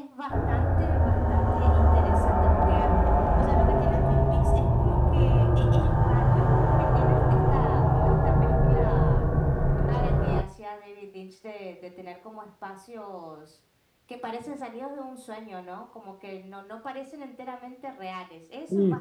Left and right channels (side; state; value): both; identical; correlation 1.00